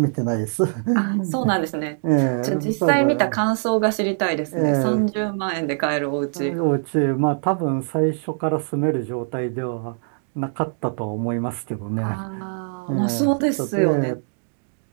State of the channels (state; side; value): silent; left; digital silence